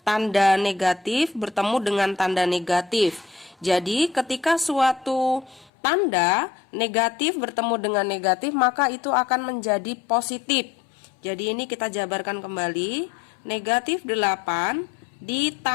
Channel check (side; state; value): right; drops out; at 5.7 s